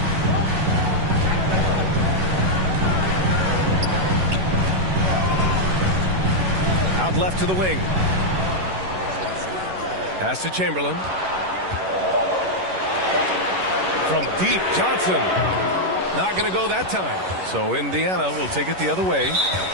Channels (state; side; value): late; left; 11 ms